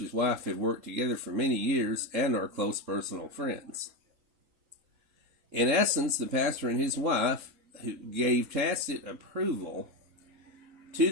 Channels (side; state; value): left; late; 3.9 ms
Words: wife have worked together for many years and are close personal friends. In essence, the pastor and his wife who gave tacit approval to